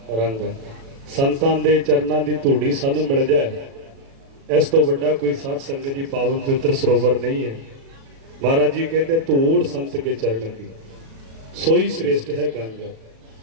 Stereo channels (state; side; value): late; left; 36 ms